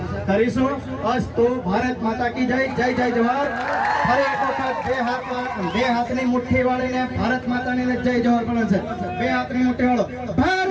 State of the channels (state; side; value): identical; both; correlation 1.00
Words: કરીશું. અસ્તુ ભારત માતા કી જય. જય જય જવાહર. ફરી એક વખત બે હાથની મુઠ્ઠી વાળીને ભારત માતાની જય જવાહર પણ છે. બે હાથની મુઠ્ઠી વાળો.